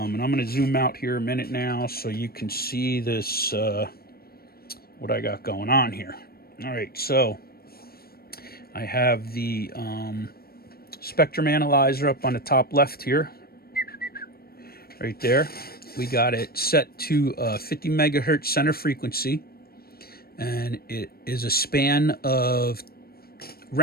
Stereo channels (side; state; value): right; late; 0.44 ms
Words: I'm going to zoom out here a minute now so you can see this, what I got going on here. All right, so I have the spectrum analyzer up on the top left here, right there. We got it set to 50 megahertz center frequency, and it is a span of